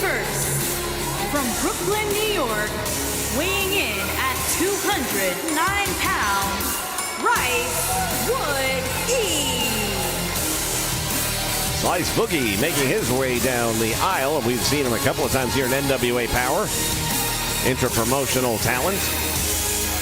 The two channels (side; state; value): both; identical; correlation 1.00